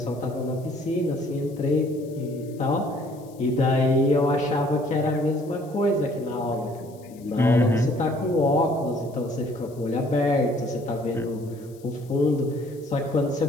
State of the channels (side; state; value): left; noise; hiss, 27 dB below the sound